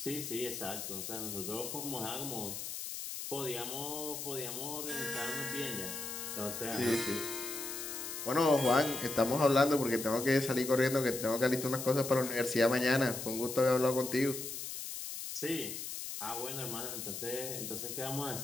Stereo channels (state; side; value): noise; left; hiss, 6 dB below the sound